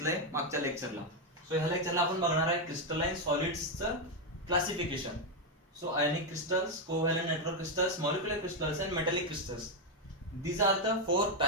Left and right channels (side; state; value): both; normal; correlation 0.03